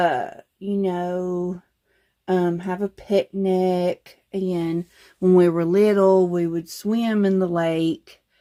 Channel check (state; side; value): identical; both; correlation 1.00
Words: a picnic. And when we were little, we would swim in the lake.